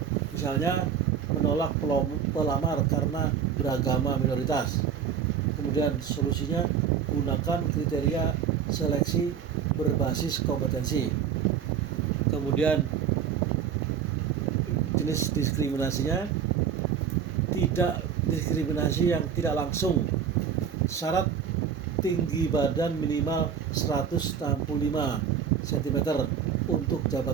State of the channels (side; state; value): left; quieter; 7.8 dB